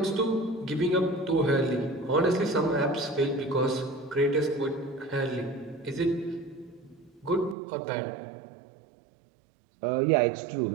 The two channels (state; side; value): drops out; left; at 7.6 s